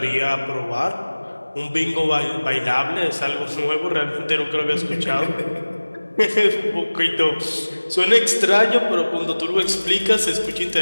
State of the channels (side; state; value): both; inverted; correlation -1.00